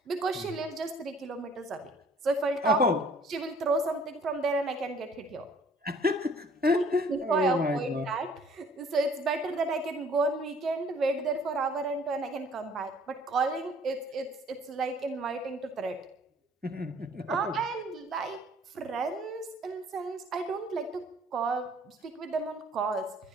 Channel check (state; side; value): normal; both; correlation 0.56